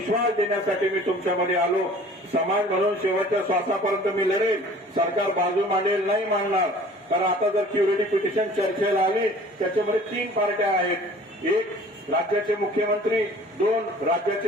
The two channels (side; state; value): both; normal; correlation 0.49